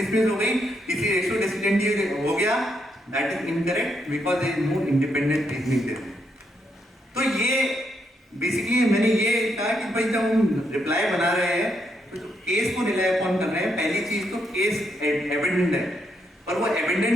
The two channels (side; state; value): both; normal; correlation 0.78